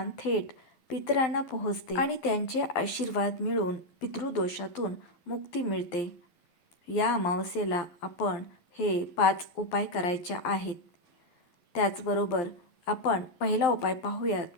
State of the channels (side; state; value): right; late; 12 ms